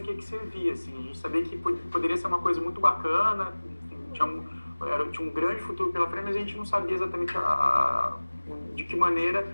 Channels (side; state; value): both; inverted; correlation -1.00